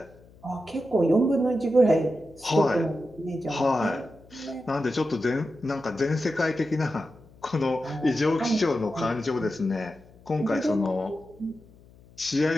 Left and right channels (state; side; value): noise; left; hum, 25 dB below the sound